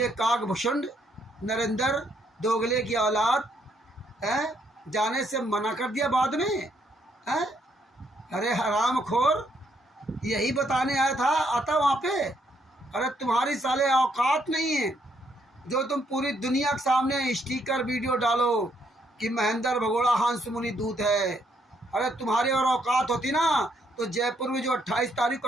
काकभूषण नरेंद्र दोगले की औलाद है, जाने से मना कर दिया बाद में है। अरे हरामखोर, यही बताने आया था, आता वहाँ पे। अरे तुम्हारी साले औकात नहीं है जो तुम पूरी दुनिया के सामने स्टिकर वीडियो डालो कि महेंद्र भगोड़ा हंस मुनि दूत है। अरे तुम्हारी और औकात होती ना तो जयपुर में जो 28 तारीख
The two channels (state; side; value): normal; both; correlation 0.72